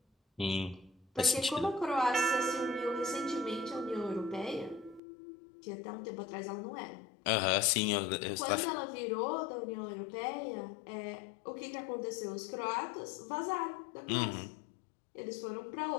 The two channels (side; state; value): right; drops out; at 5.0 s